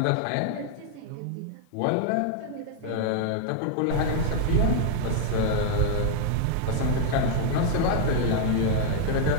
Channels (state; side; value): different; both; correlation 0.00